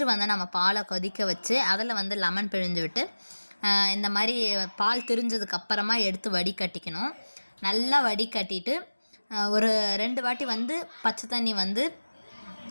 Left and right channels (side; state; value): both; inverted; correlation -1.00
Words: வந்து நம்ம பாலை கொதிக்க வச்சு அதில் வந்து லெமன் பிழிஞ்சு விட்டு இந்த மாதிரி பால் திரிஞ்சதுக்கப்புறமா எடுத்து வடிகட்டிக்கணும். நல்லா வடிகட்டிட்டு ஒரு 2 வாட்டி வந்து பச்சை தண்ணி வந்து